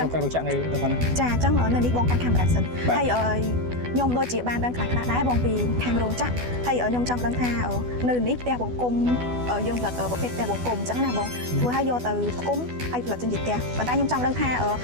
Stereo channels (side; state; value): left; late; 12 ms